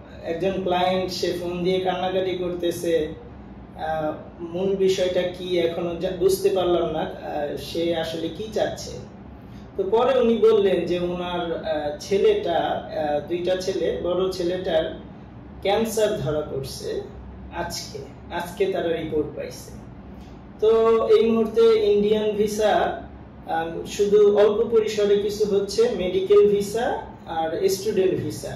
একজন ক্লায়েন্ট সে ফোন দিয়ে কান্নাকাটি করতেছে, মূল বিষয়টা কি এখনো বুঝতে পারলাম না, সে আসলে কি চাচ্ছে। তো পরে উনি বললেন যে ওনার ছেলেটা, দুইটা ছেলে, বড় ছেলেটার ক্যান্সার ধরা পড়ছে আজকে তারা রিপোর্ট পাইছে। তো এই মুহূর্তে ইন্ডিয়ান ভিসা শুধু অল্প পরিসরে কিছু হচ্ছে, মেডিকেল ভিসা আর স্টুডেন্ট ভিসা,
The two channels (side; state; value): both; identical; correlation 1.00